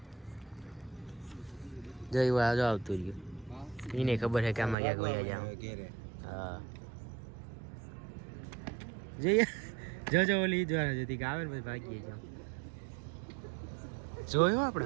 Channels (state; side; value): drops out; left; at 4.8 s